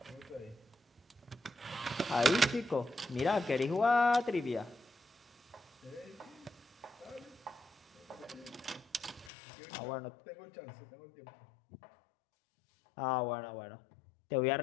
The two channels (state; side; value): drops out; right; at 9.3 s